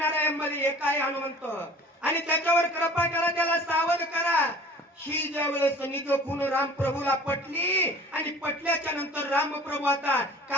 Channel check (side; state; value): both; normal; correlation 0.46